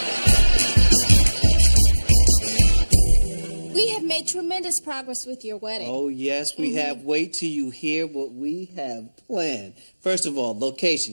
We have made tremendous progress with your wedding. Oh, yes, we have. Wait till you hear what we have planned. First of all,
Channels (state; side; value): inverted; both; correlation -1.00